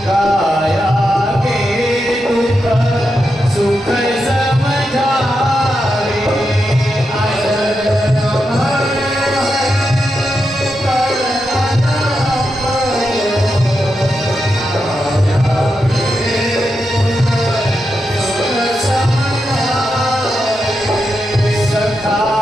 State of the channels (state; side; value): normal; both; correlation 0.86